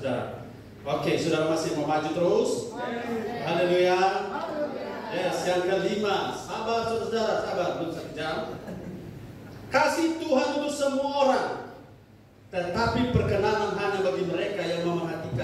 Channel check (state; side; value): identical; both; correlation 1.00